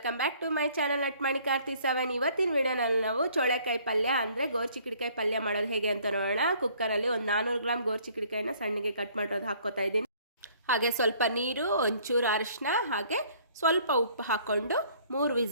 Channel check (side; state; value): both; inverted; correlation -0.59